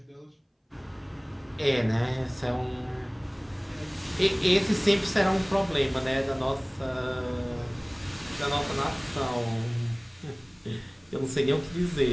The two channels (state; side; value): identical; both; correlation 1.00